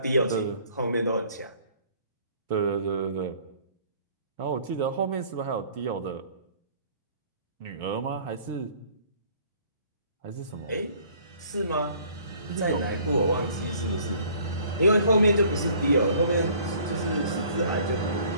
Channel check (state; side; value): inverted; both; correlation -0.55